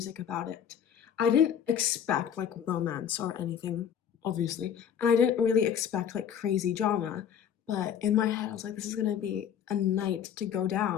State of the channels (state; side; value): quieter; right; 8.7 dB